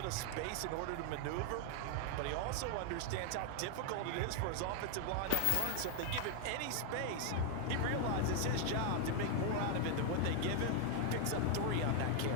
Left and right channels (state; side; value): different; both; correlation 0.00